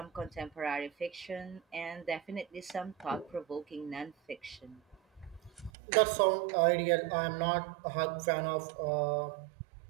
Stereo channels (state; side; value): drops out; left; at 5.7 s